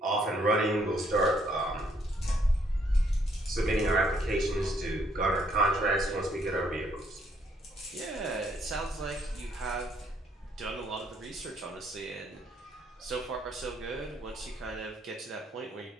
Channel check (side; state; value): both; normal; correlation 0.69